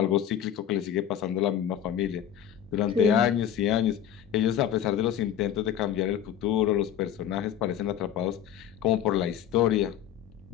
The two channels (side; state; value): right; quieter; 10.0 dB